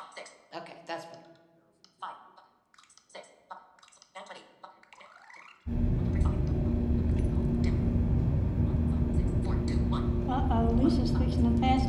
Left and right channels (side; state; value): both; identical; correlation 1.00